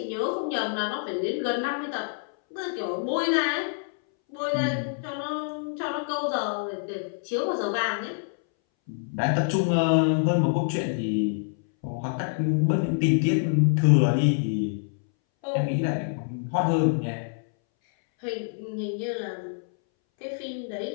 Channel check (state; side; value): silent; right; 61 dB below the other